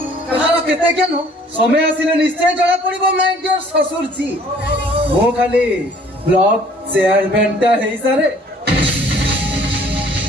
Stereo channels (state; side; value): normal; both; correlation 0.56